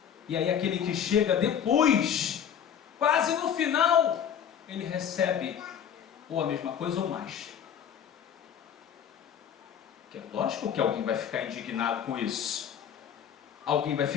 E aí aquele que chega depois, quase no final, ele recebe ou a mesma coisa ou mais. Que é lógico que alguém vai ficar indignado com isso. Alguém vai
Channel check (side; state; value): right; quieter; 8.6 dB